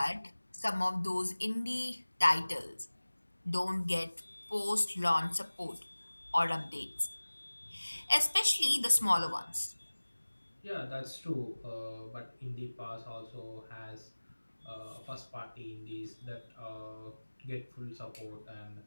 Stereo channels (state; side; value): inverted; both; correlation -1.00